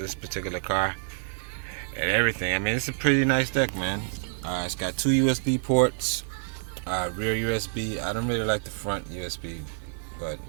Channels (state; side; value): silent; left; digital silence